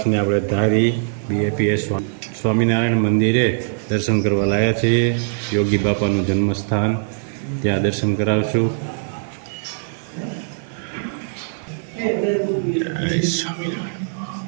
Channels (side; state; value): left; silent; 65 dB below the other